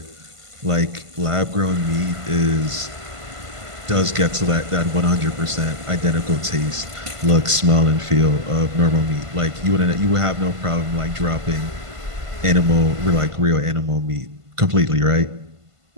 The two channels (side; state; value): left; late; 1.5 ms